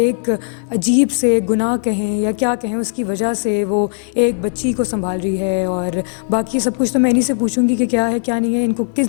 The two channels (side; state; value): right; silent; digital silence